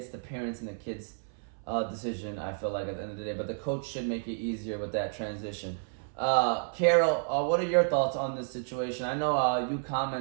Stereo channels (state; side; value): silent; left; 57 dB below the other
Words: the parents and the kids' decision, I feel like, at the end of the day. But the coach should make it easier with that transition. Carol, what are your thoughts on this situation? I know you